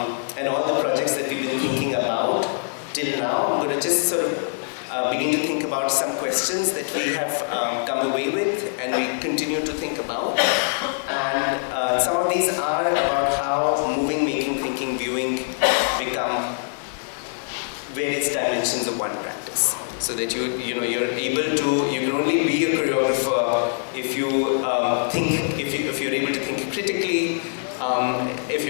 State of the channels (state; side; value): silent; right; digital silence